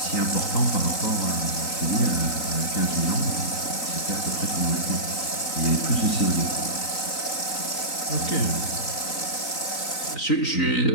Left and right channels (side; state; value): right; late; 3.9 ms